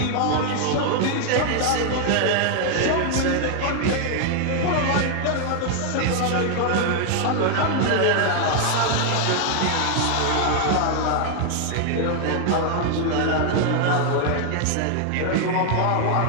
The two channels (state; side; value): different; both; correlation 0.00